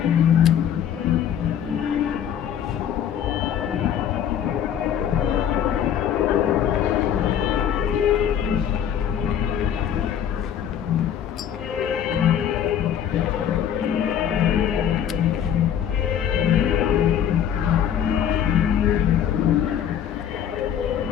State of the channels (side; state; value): right; quieter; 9.3 dB